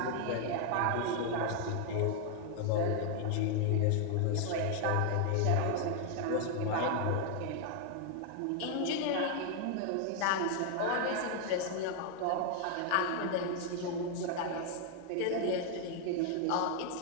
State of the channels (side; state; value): both; different; correlation 0.00